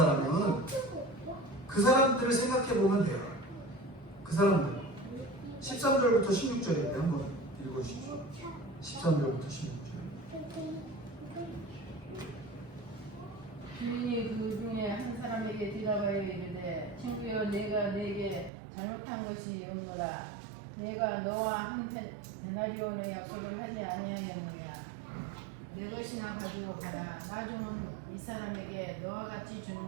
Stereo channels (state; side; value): drops out; left; at 18.5 s